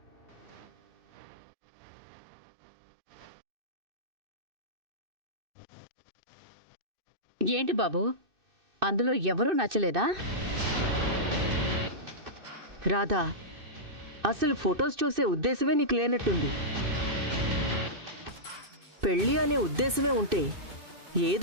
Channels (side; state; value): left; late; 2.6 ms